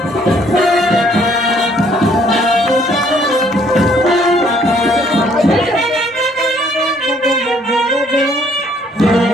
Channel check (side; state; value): both; normal; correlation 0.63